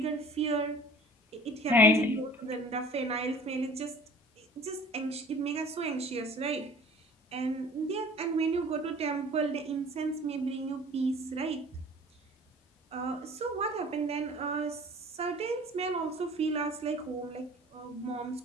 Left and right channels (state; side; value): normal; both; correlation 0.46